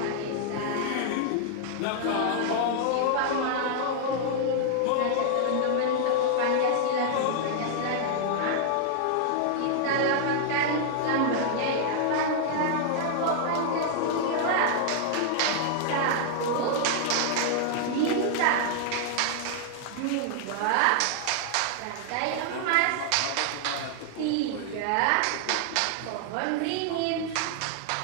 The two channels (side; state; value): both; different; correlation -0.01